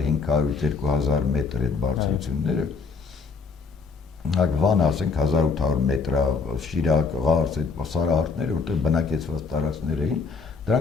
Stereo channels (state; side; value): quieter; right; 4.8 dB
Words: մետր այդ բարձրությունները, Վանը, ասենք 1800 մետր, Շիրակ, Ղարս, այդ սարահարթները, որտեղ բնակեցված տարածքներ էին,